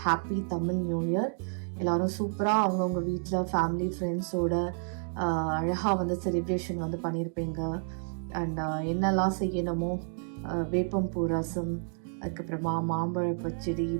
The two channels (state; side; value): silent; left; digital silence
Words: happy Tamil new year. எல்லாரும் சூப்பராக அவங்கவுங்க வீட்டில் ஃபேமிலி ஃப்ரெண்ட்ஸோட அழகாக வந்து செலிப்ரேஷன் வந்து பண்ணியிருப்பீங்க. அண்ட் என்னெல்லாம் செய்யணுமோ வேப்பம்பூ ரசம், அதுக்கப்புறமா மாம்பழ பச்சடி,